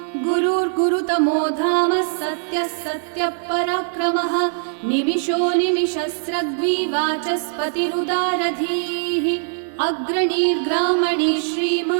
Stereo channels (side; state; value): left; silent; digital silence